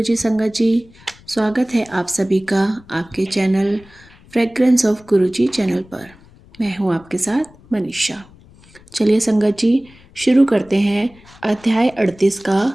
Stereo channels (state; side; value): noise; left; rumble, 25 dB below the sound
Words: संगत जी। स्वागत है आप सभी का आपके channel fragrance of Guruji channel पर। मैं हूं आपके साथ मनीषा। चलिए संगत जी शुरू करते हैं अध्याय 38 का